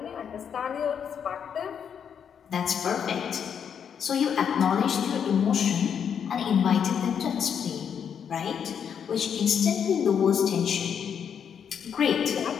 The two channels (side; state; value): right; quieter; 7.7 dB